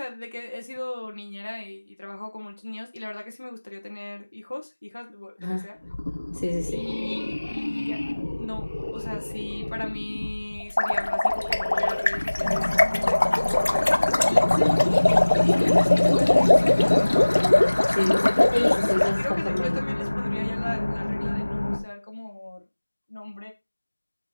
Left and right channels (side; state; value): both; inverted; correlation -1.00